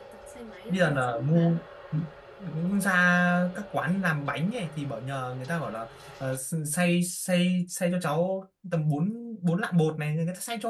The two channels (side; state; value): both; identical; correlation 1.00